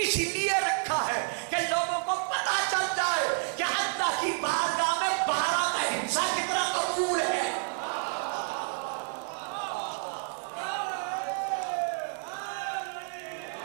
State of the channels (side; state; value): left; silent; 58 dB below the other